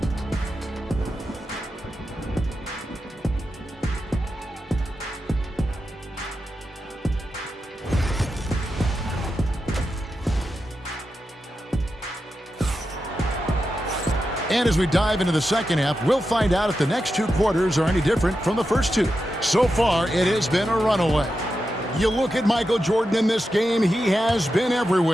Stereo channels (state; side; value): normal; both; correlation 0.89